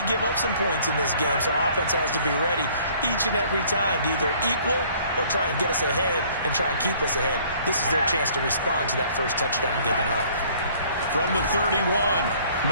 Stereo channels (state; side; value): inverted; both; correlation -0.57